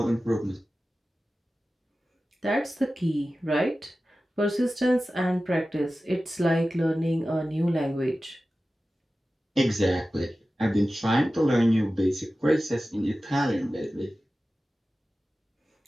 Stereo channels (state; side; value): normal; both; correlation 0.95